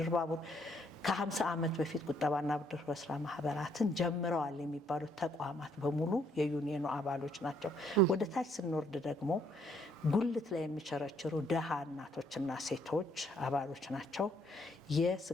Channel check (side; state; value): both; normal; correlation 0.68